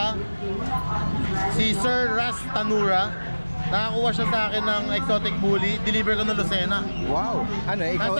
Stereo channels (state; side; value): inverted; both; correlation -1.00